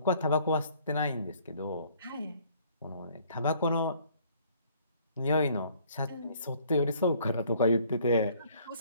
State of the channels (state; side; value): inverted; both; correlation -0.60